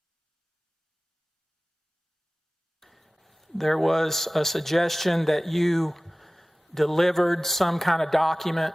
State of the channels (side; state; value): both; normal; correlation 0.98